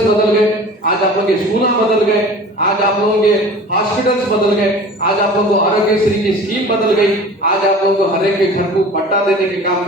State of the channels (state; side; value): normal; both; correlation 0.41